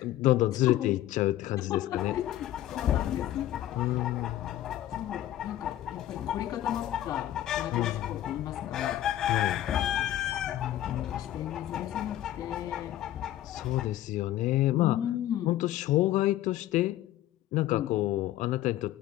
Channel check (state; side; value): quieter; right; 13.4 dB